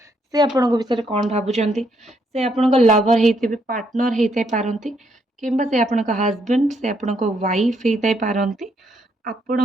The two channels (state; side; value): normal; both; correlation 0.74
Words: से आपण को विषय कोन भाबुचंती से आपण को लवर हेतिबे पार्टनर हेतै पारंती किंबा से आपण को हस्बैंड से आपण को वाइफ हेतै पारंती